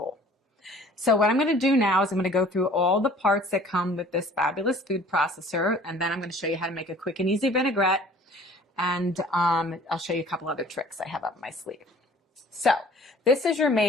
So what I'm going to do now is I'm going to go through all the parts that come with this fabulous food processor, and then I'm going to show you how to make a quick and easy vinaigrette, and I'll show you a couple other tricks I have up my sleeve. So this is your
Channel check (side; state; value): both; normal; correlation 0.51